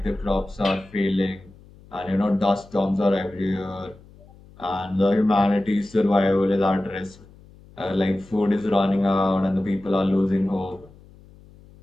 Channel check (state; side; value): noise; left; hum, 24 dB below the sound